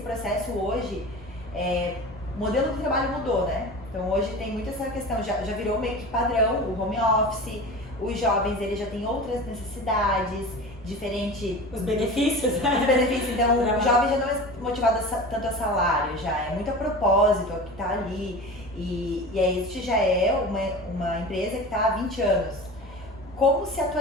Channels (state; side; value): noise; right; rumble, 25 dB below the sound